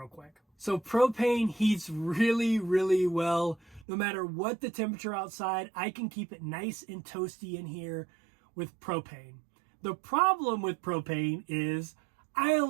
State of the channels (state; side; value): drops out; left; at 3.9 s